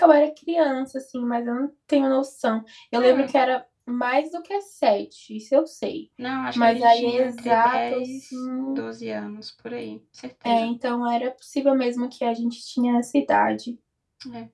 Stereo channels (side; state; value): both; identical; correlation 1.00